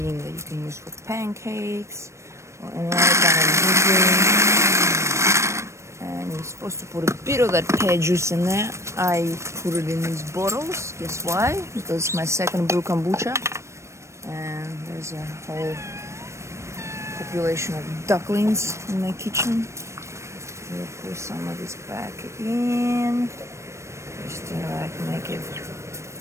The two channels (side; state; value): left; late; 0.13 ms